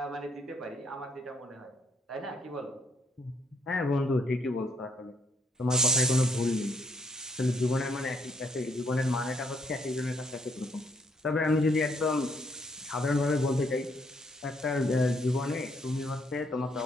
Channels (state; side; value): normal; both; correlation 0.71